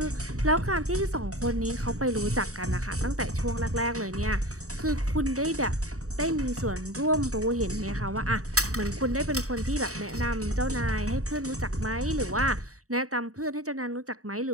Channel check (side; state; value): left; late; 0.65 ms